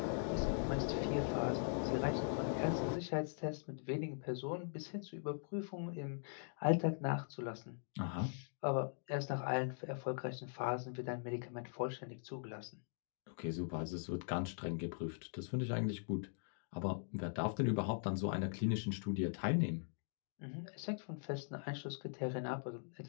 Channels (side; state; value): right; silent; digital silence